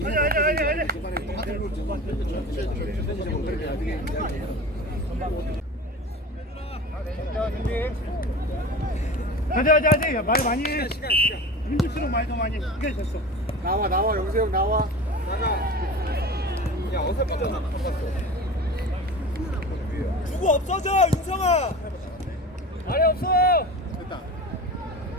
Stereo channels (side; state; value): both; normal; correlation 0.33